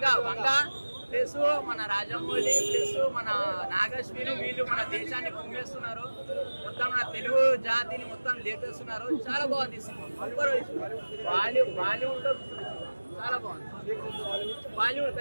వంగ ప్లస్ మన రాజమౌళి ప్లస్ మన నాగశ్విని వీళ్ళు మన దేశాన్ని కుమ్మేస్తున్నారు. మొత్తం మన తెలుగు జాతిని మొత్తం లేపేస్తున్నారు. చాలా బాగుంది సినిమా. బాలీవుడ్ లో చాలా బాగుంది. బాలీవుడ్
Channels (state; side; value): inverted; both; correlation -1.00